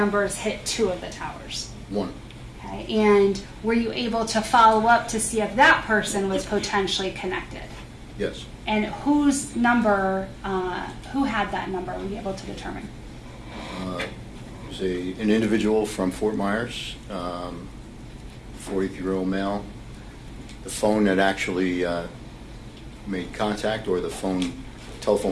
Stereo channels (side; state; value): both; identical; correlation 1.00